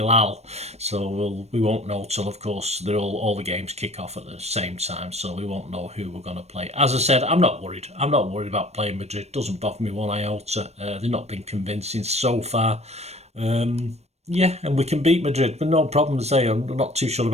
So we won't know till, of course, all the games kick off at the same time, so we won't know who we're going to play. As I said, I'm not worried. I'm not worried about playing Madrid. Doesn't bother me one iota. They've not been convincing so far. Yeah, and we can beat Madrid, but no problem to say. I'm not too sure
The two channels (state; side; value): late; left; 0.31 ms